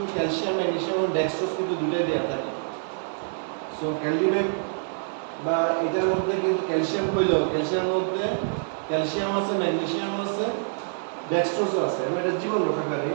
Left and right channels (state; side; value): silent; left; digital silence